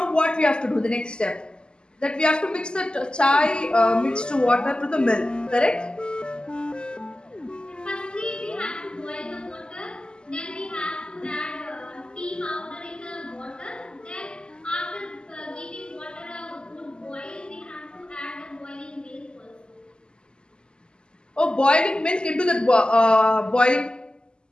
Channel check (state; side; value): late; right; 0.048 ms